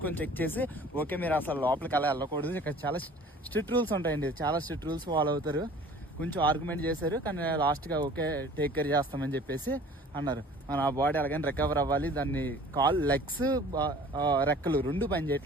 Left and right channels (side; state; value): both; normal; correlation 0.48